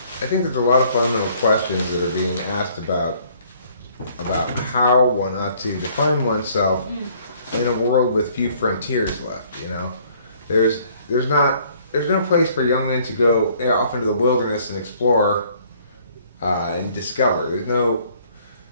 I think there's a lot of fundamental questions that are being asked about how one ought to define oneself in a world with few frontiers left. You know, there's no place for young men to go off into the wilderness and explore and discover.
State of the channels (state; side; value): inverted; both; correlation -0.60